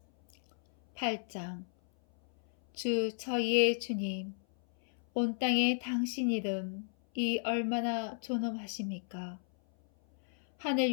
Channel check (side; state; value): right; silent; 55 dB below the other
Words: 8장. 주 저희의 주님, 온 땅에 당신 이름이 얼마나 존엄하십니까?